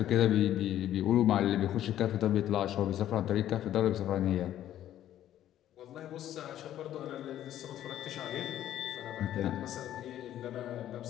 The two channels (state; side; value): quieter; right; 12.0 dB